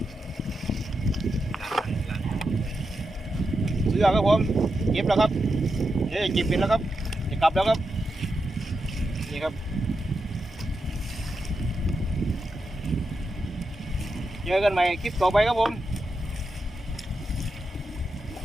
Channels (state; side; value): normal; both; correlation 0.87